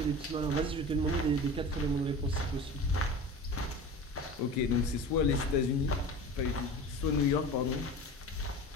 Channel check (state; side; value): normal; both; correlation 0.35